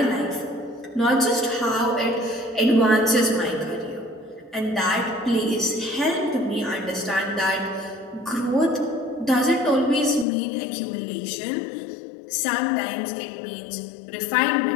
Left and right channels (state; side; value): drops out; right; at 10.2 s